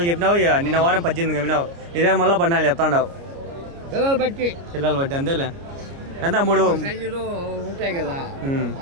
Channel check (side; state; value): left; late; 29 ms